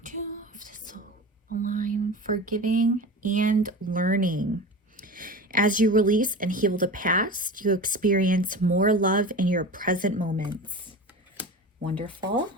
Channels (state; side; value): normal; both; correlation 0.31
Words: will align, forgiving and learning. As you release and heal the past, you experience more love in your present moments. Wonderful.